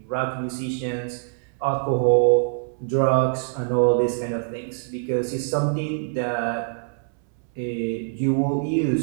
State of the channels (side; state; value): left; silent; 63 dB below the other